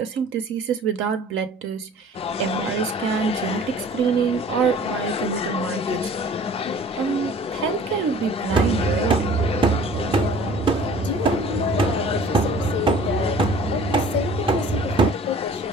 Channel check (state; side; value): normal; both; correlation 0.48